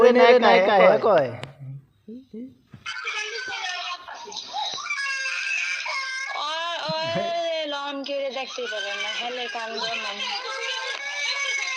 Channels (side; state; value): both; identical; correlation 1.00